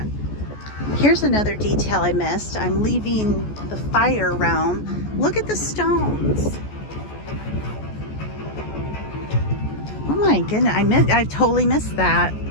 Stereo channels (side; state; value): right; late; 14 ms